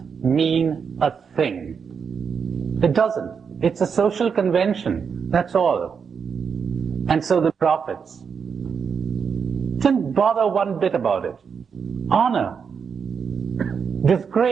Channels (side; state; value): left; quieter; 6.4 dB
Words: mean a thing. It doesn't. It's a social convention. That's all. And so the prophets didn't bother one bit about it. Honor,